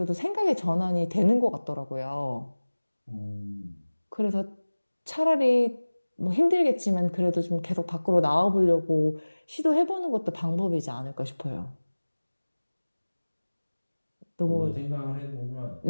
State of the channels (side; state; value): both; inverted; correlation -1.00